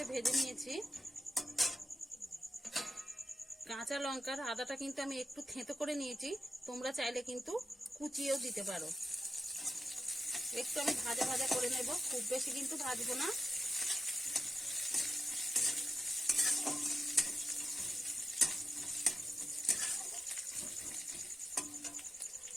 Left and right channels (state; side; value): normal; both; correlation 0.91